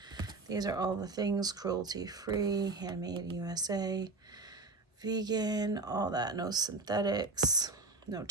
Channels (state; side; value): quieter; left; 3.5 dB